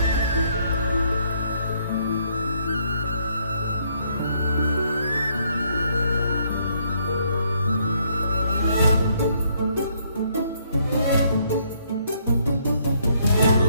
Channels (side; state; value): both; inverted; correlation -0.69